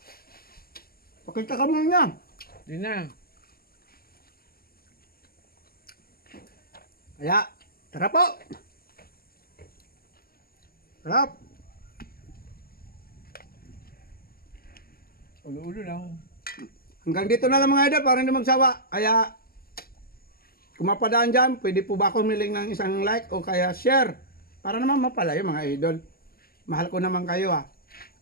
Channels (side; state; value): right; late; 0.44 ms